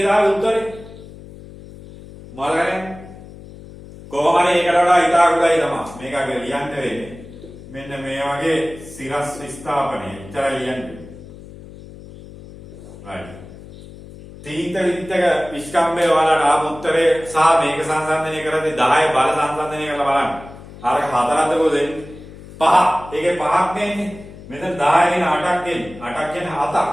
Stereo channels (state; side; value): noise; left; hum, 17 dB below the sound